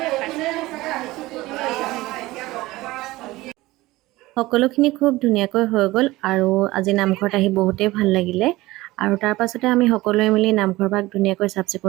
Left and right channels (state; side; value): quieter; left; 19.0 dB